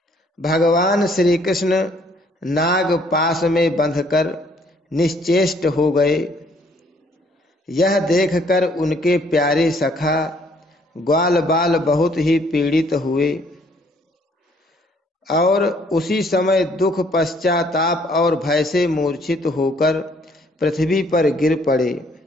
भगवान श्री कृष्ण नाग पास में बंधकर निश्चेष्ट हो गए। यह देखकर उनके प्यारे सखा ग्वाल बाल बहुत ही पीड़ित हुए और उसी समय दुख, पश्चाताप और भय से मूर्छित होकर पृथ्वी पर गिर पड़े,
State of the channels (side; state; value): both; normal; correlation 0.64